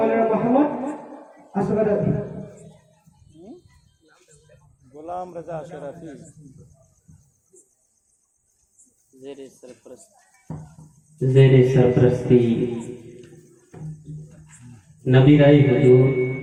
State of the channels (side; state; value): both; identical; correlation 1.00